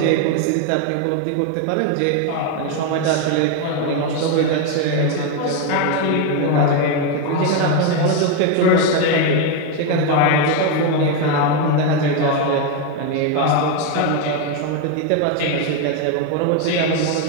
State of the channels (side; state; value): both; different; correlation 0.02